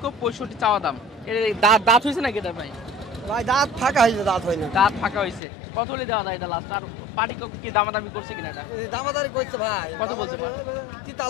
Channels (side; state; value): right; drops out; at 5.4 s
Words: চাওয়া দাম। এর দাঁত হয়েছে নাকি এটা ভাই? ভাই দাঁত ফাঁকা হয়েছে, দাঁত হয় না। দাঁত ফাঁকা হয়েছে। কত হলে দেওয়া যায় এটা লাস্ট? আর পার্টি কি দামাদামি করছে কিনা এটা? দামাদারি করছে ভাই। কত দামাদারি